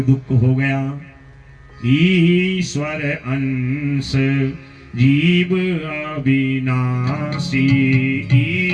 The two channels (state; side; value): identical; both; correlation 1.00